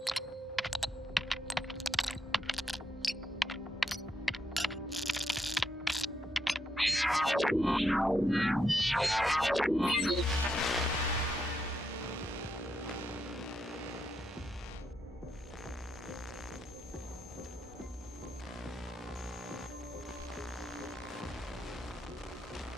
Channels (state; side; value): normal; both; correlation 0.81